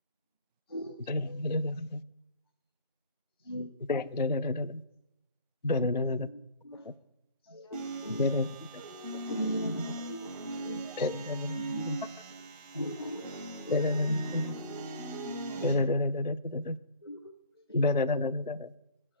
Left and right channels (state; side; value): inverted; both; correlation -0.48